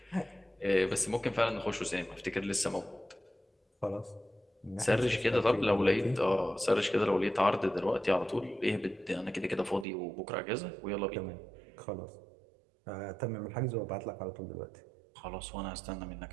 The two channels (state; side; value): drops out; left; at 9.9 s